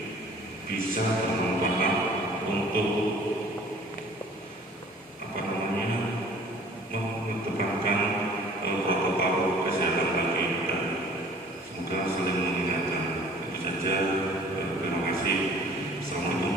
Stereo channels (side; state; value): both; normal; correlation 0.50